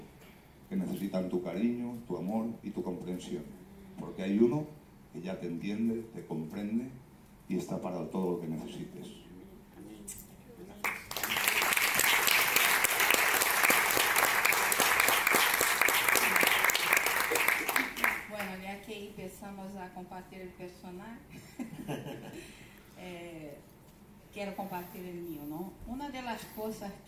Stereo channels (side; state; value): both; identical; correlation 1.00